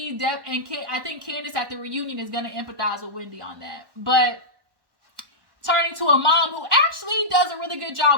think Candace at the reunion is going to empathize with Wendy on that. But turning to a mom who actually does a really good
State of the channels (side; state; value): left; late; 1.1 ms